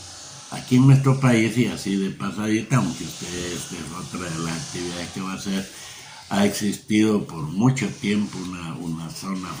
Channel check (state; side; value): identical; both; correlation 1.00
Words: Aquí en nuestro país, y así de pasadita, aunque ustedes, esta es otra de las actividades que va a hacer, ha existido por mucho tiempo una zona